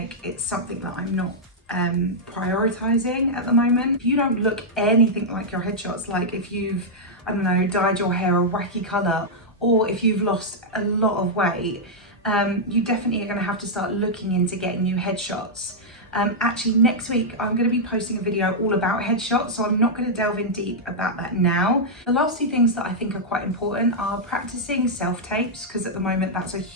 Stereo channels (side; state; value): both; normal; correlation -0.06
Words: it's something that I'm not prioritizing at the moment. If you don't look anything like your headshots, like if you've, I don't know, dyed your hair a wacky color, or if you've lost a lot of weight, you definitely are going to have to start looking into getting new headshots. Actually, next week I'm going to be posting a video all about headshots, so I'm not going to delve in deep about that now. The last two things that I think are quite important are practicing self-tapes, because at the moment that's a